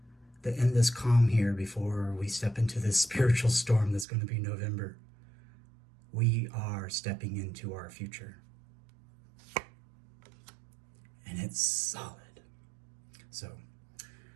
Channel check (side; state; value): left; drops out; at 4.0 s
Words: that in this calm here, before we step into this spiritual storm that's going to be November, we are stepping into our future. And it's solid. So,